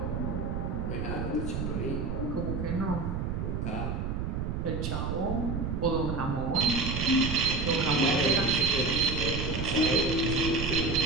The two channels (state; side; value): noise; right; rumble, 2 dB below the sound